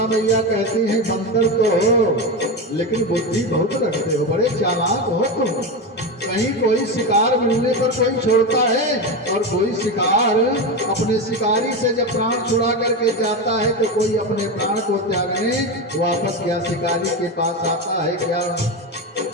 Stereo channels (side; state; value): both; normal; correlation 0.17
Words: मैया कहती है बंदर तो हो, लेकिन बुद्धि बहुत रखते हो, बड़े चालाक हो तुम। कहीं कोई शिकार मिलने पर कोई छोड़ता है और कोई शिकार अपने शिकारी से जब प्राण छुड़ा करके जाता है तो कोई अपने प्राण को त्यागने वापस क्या शिकारी के पास आता है क्या?